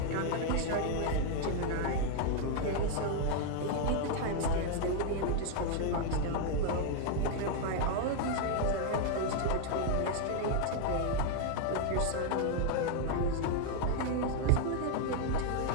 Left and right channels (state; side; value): different; both; correlation 0.00